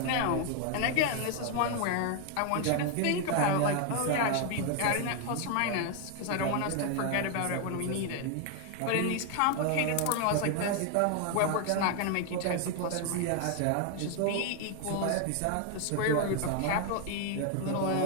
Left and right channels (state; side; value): different; both; correlation 0.00